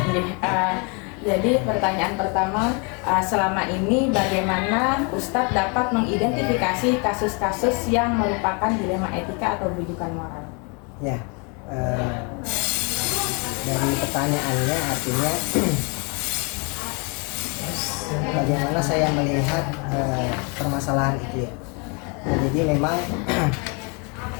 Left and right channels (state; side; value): quieter; right; 33.7 dB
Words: Jadi pertanyaan pertama, selama ini bagaimana Ustadz dapat mengidentifikasi kasus-kasus yang merupakan dilema etika atau rujukan moral? Ya, dari pertanyaannya artinya bagaimana saya melihat permasalahan itu ya. Jadi memang